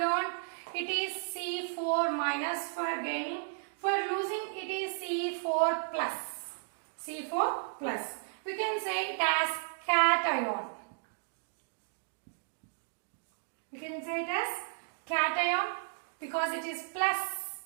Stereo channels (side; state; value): left; silent; digital silence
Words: it is C4 minus for gaining. For losing it is C4 plus. C4 plus. We can say it as cation. We can say it as cation because it is plus.